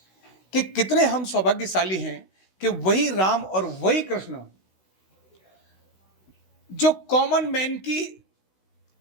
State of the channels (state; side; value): late; right; 16 ms